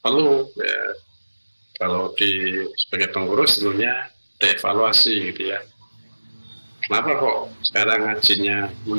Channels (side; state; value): both; inverted; correlation -1.00